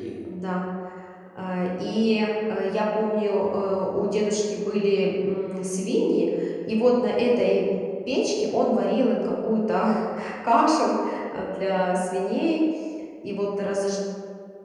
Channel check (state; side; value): identical; both; correlation 1.00